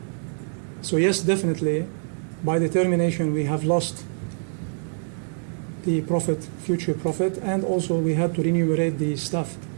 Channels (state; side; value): silent; left; 62 dB below the other